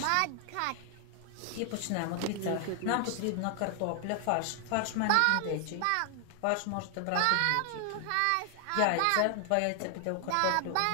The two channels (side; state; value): both; different; correlation 0.00